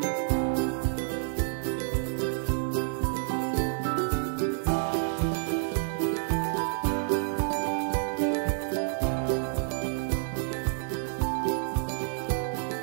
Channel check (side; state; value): left; silent; digital silence